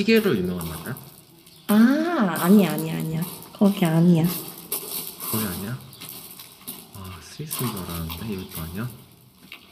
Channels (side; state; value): both; identical; correlation 1.00